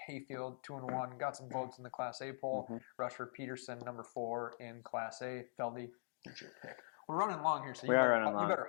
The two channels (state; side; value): silent; right; digital silence